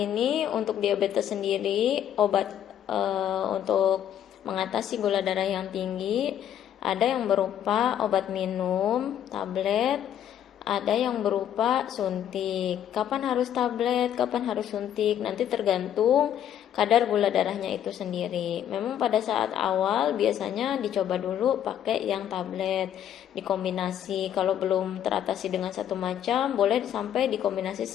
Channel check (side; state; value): right; quieter; 10.3 dB